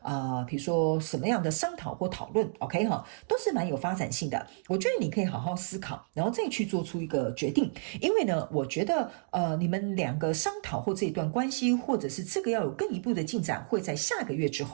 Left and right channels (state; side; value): silent; left; digital silence